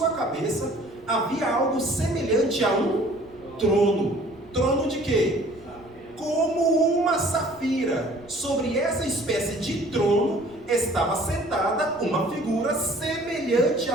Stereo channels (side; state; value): right; noise; rumble, 26 dB below the sound